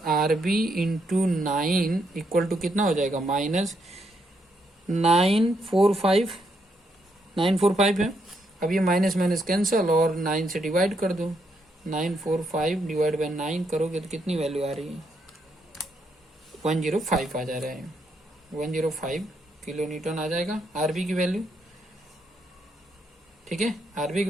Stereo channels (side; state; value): both; normal; correlation 0.77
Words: B into 9 equal to कितना हो जाएगा माइनस 945 है। अब ये माइनस माइनस कैंसल और 9 से डिवाइड कर दो, 945 डिवाइड बाई 9 करोगे तो कितनी वैल्यू आ रही है 105 आ जा रहा है, 105 किलो न्यूटन आ जाएगा आरबी की वैल्यू, ठीक है। आरबी की